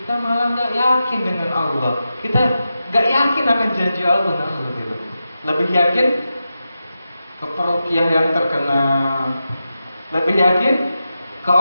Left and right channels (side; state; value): both; inverted; correlation -0.90